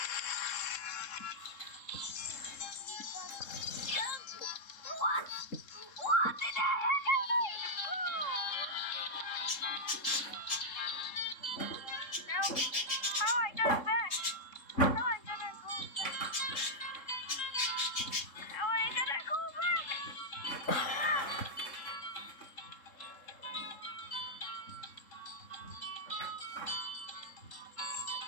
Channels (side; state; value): right; late; 3.7 ms